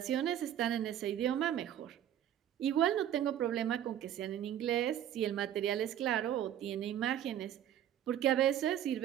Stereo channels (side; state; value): left; quieter; 10.9 dB